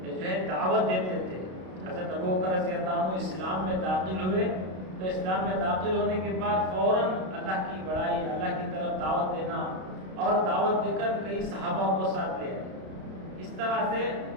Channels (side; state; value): left; late; 32 ms